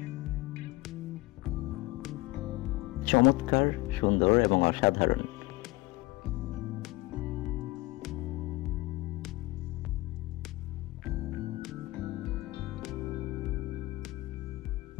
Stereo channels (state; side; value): quieter; right; 20.6 dB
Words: চমৎকার, সুন্দর এবং অসাধারণ।